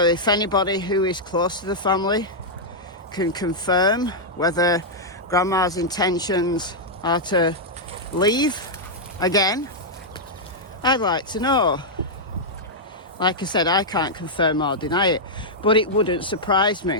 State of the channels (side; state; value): both; normal; correlation -0.06